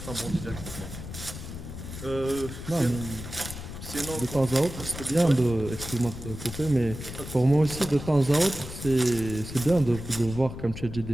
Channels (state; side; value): noise; left; rumble, 10 dB below the sound